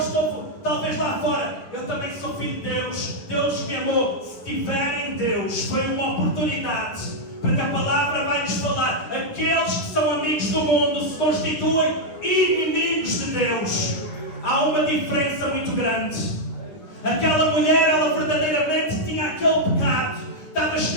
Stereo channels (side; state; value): right; late; 10 ms